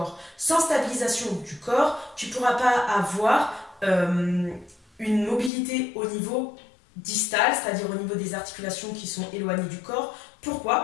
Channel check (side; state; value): right; drops out; at 5.5 s